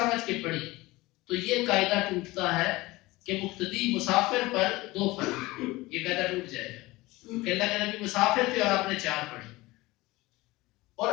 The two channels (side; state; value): right; quieter; 20.4 dB